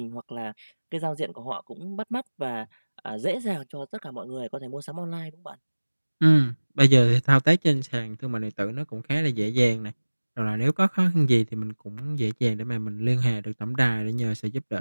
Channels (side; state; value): both; inverted; correlation -1.00